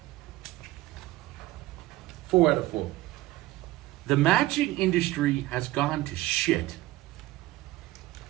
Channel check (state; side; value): quieter; left; 17.1 dB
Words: 4 out of 4. The matching industry has gone to shit.